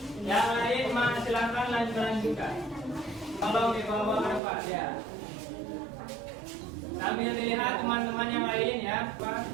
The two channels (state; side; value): drops out; left; at 4.4 s